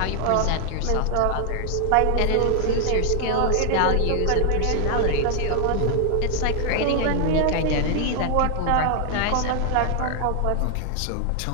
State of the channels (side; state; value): both; different; correlation 0.00